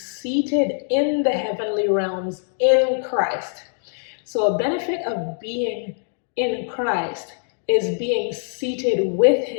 in the heavenly realms in Christ. So a benefit of being in Christ is being seated with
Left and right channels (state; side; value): silent; right; 64 dB below the other